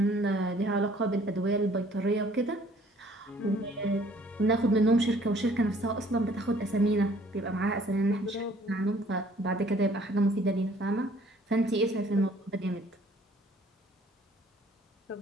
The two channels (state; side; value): normal; both; correlation 0.58